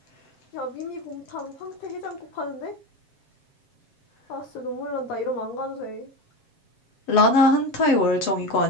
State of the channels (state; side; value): late; right; 7.9 ms